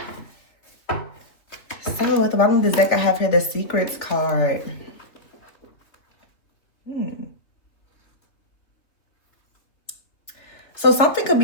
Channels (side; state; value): right; late; 3.3 ms